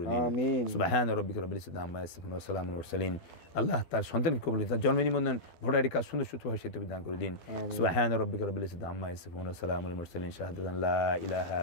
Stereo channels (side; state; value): right; late; 12 ms